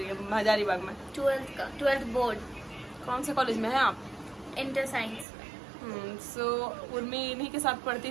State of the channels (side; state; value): left; drops out; at 5.2 s